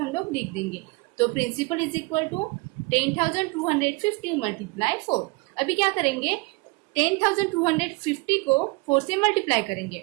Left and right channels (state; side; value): quieter; left; 26.2 dB